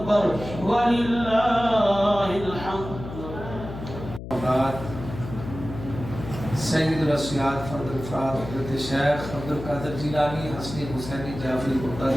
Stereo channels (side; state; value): left; noise; hum, 10 dB below the sound